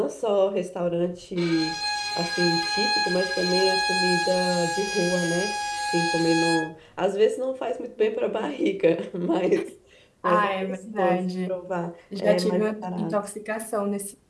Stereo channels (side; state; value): both; identical; correlation 1.00